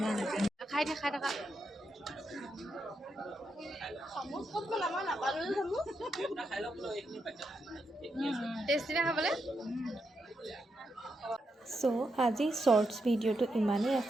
Khai থাকা Kamu kok lama nak baru kamu? Tasty না খাবলে so আজি shorts ভিডিঅ'টো ইমানেই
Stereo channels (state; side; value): normal; both; correlation 0.83